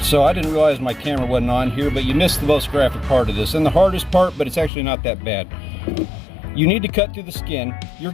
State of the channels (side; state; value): right; drops out; at 4.7 s